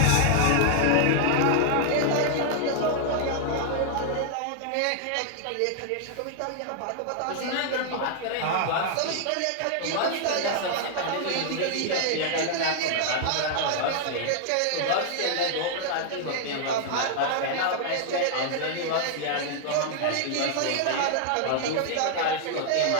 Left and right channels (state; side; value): different; both; correlation 0.00